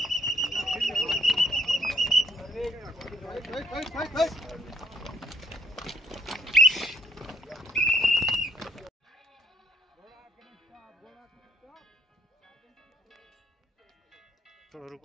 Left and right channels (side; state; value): both; normal; correlation 0.67